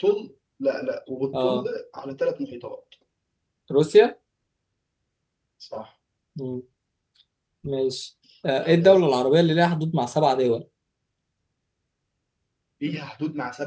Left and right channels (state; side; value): identical; both; correlation 1.00